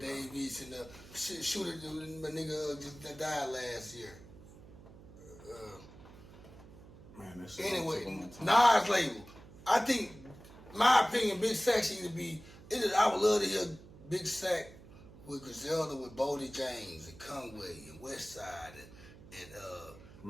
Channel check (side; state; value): right; noise; hum, 19 dB below the sound